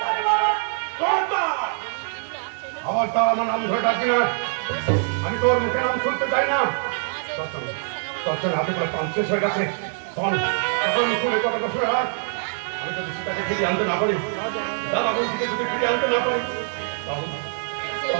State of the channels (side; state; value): left; silent; 63 dB below the other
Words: আবার তার আমার নাম ধরে ডাকি না, আমি তোর মুখে নাম শুনতে চাই না। তখন হাতে করে পান শেষ হয়ে গেছে, তখন মুখে কথাটা শুনে রাখ। আমি যদি সীতাকে ফিরিয়ে আনতে না পারি, দাদা বন্ধুকে যদি ফিরিয়ে আনতে না পারি,